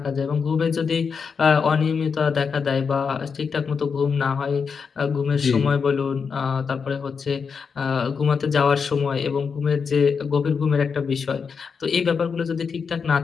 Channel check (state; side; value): quieter; right; 5.8 dB